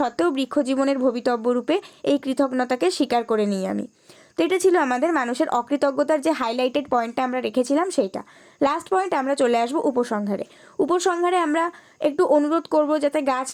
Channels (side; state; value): both; identical; correlation 1.00